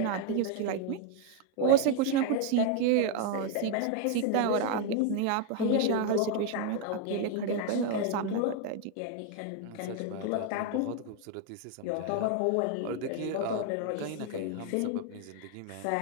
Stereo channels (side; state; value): both; different; correlation 0.01